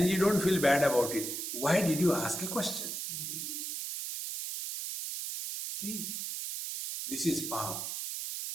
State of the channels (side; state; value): right; noise; hiss, 4 dB below the sound